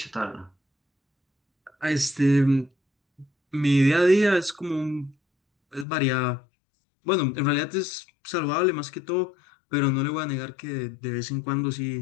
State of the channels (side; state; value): right; drops out; at 5.9 s